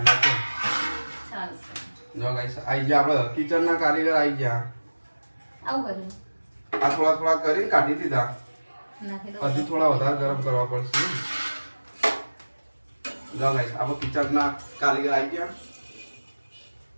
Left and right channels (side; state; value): both; inverted; correlation -1.00